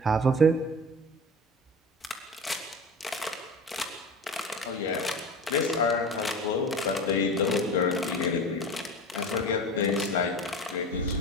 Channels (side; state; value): both; normal; correlation 0.31